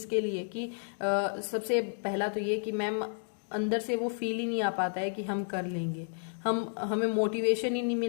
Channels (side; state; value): right; silent; digital silence